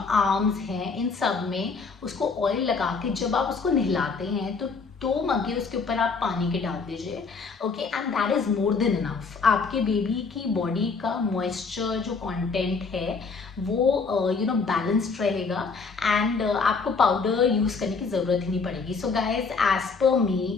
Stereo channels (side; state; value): right; quieter; 4.7 dB